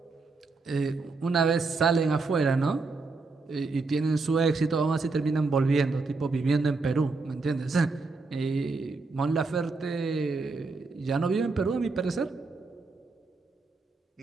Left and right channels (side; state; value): left; quieter; 3.9 dB